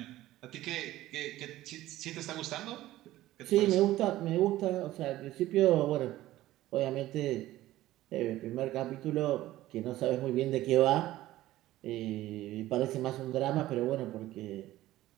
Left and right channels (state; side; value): quieter; left; 15.5 dB